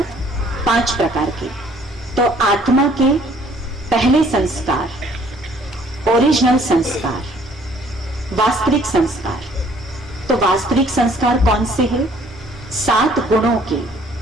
5 प्रकार के। तो आत्मा के पहले संस्कार, ओरिजिनल संस्कार, वास्तविक संस्कार। तो वास्तविक संस्कार कौन से हैं? 7 गुणों के।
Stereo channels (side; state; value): both; normal; correlation 0.59